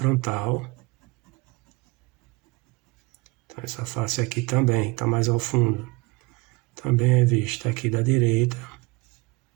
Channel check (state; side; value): quieter; left; 24.0 dB